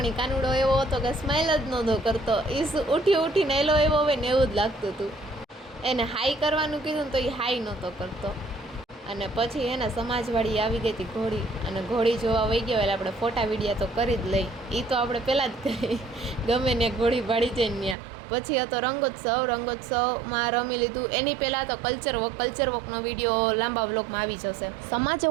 એ કાનુડો એવો હતો કે સ્માઇલ જ નહોતો કરતો. એ ઉઠીને એલો એવો હોય ને એવું જ લાગતું હતું. એને હાઈ કરવાનું કીધું તો એ હાઈ નહોતો કરતો. અને પછી એને સમાજવાળી આવી ગઈ હતી ઘોડી, અને ઘોડી જોવા વહી ગયો એટલે આપણે ફોટા વિડીયા તો કરી જ લઈ. એ તો આપણે પહેલાં જ કહી ગમે ને ઘોડી ભાડી જઈને ત્યાં. પછી હતો રંગોત્સવમાં રમી લીધું. એની પહેલાં તો કલ્ચર વોકનો વિડીયો લાંબા વ્લોગમાં આવી જશે. સમાજે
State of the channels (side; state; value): left; drops out; at 17.9 s